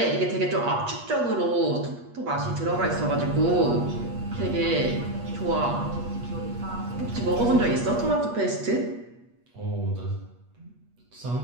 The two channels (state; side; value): late; left; 8.3 ms